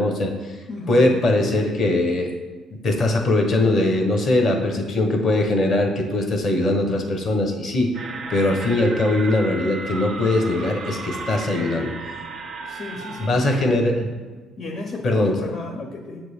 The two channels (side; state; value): both; normal; correlation 0.72